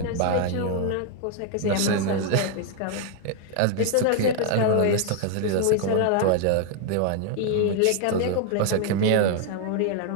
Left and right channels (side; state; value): both; different; correlation 0.00